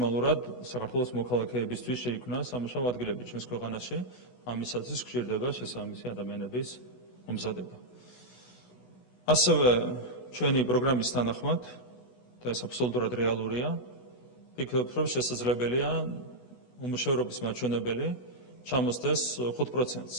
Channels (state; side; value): late; right; 16 ms